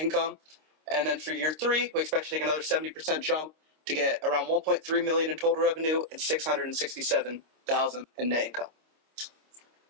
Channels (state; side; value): late; left; 26 ms